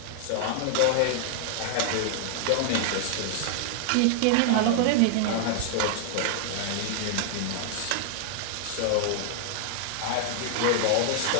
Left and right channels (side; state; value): both; different; correlation 0.00